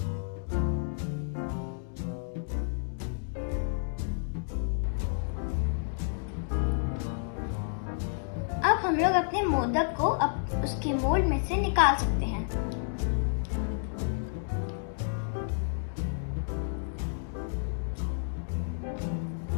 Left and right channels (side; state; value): right; silent; digital silence